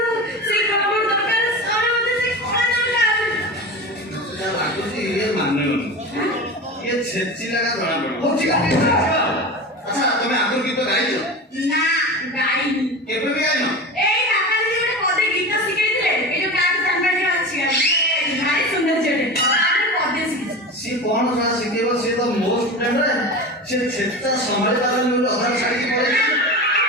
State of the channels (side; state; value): both; normal; correlation 0.28